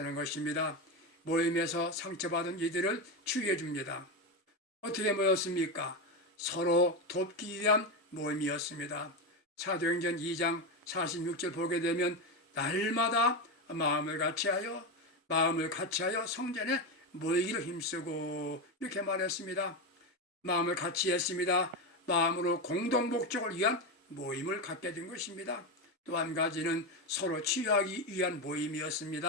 것입니다. 모임에서 상처받은 이들을 치유해 줍니다. 어떻게 모였습니까? 서로 돕기 위한 모임이었습니다. 사도행전 2장 46절 보게 되면 날마다 마음을 같이하여 성전에 모이기를 힘쓰고 이렇게 말했습니다. 마음을 같이 했습니다. 마음으로 공동 목적을 위한 모임을 갖게 된 것입니다. 또 한 가지는 서로 치유하기 위한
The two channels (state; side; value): normal; both; correlation 0.13